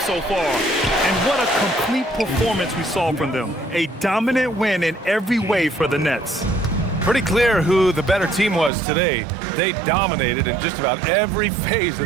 far. And what a complete performance we saw from them. A dominant win in every way for the Nets. Pretty clear who the better team was today. They dominated in just about every phase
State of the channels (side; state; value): left; drops out; at 8.7 s